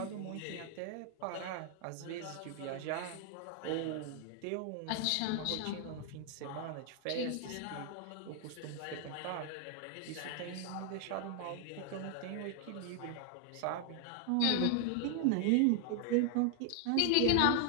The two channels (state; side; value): different; both; correlation 0.00